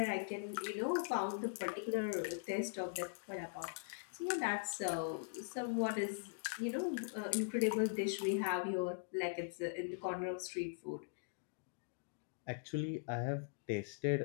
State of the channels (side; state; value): right; silent; digital silence